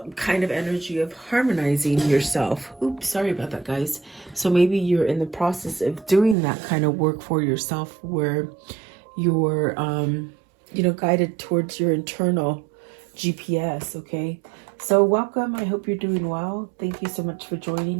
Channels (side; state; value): left; drops out; at 6.4 s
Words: kind of energy of harmonizing yourself. Oops, sorry about that, guys. So maybe you're in the process of doing that kind of work for yourself, where you're guided towards your internal GPS. Okay, so welcome. I hope you're doing well. Thank you so much for